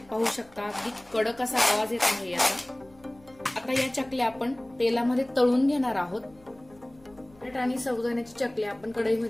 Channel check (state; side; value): noise; left; hum, 27 dB below the sound